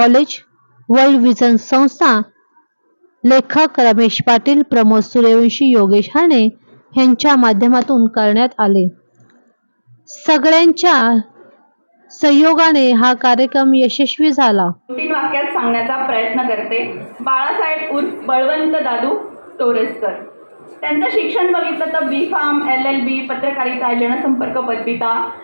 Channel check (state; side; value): inverted; both; correlation -1.00